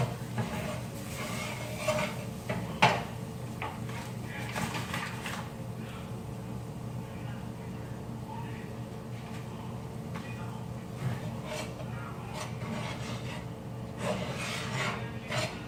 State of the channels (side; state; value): both; identical; correlation 1.00